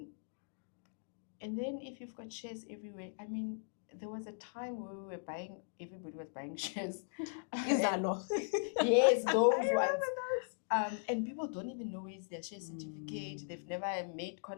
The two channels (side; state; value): right; silent; digital silence